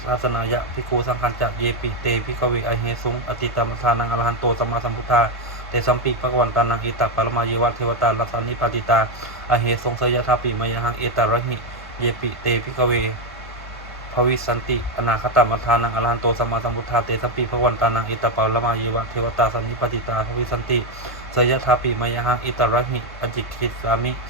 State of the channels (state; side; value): normal; both; correlation 0.05